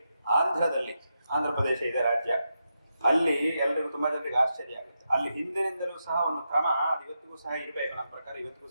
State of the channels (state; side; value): inverted; both; correlation -0.86